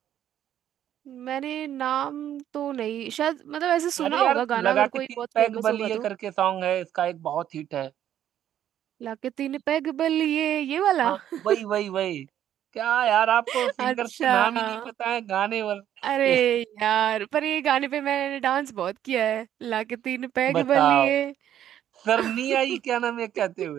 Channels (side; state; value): left; quieter; 10.9 dB